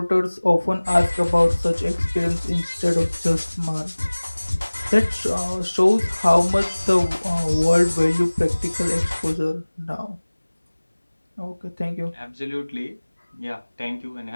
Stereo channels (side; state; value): both; inverted; correlation -1.00